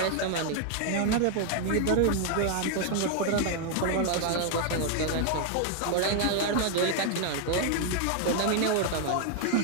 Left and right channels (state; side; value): different; both; correlation 0.00